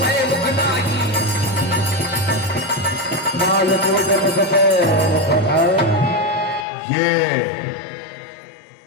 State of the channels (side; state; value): right; drops out; at 6.7 s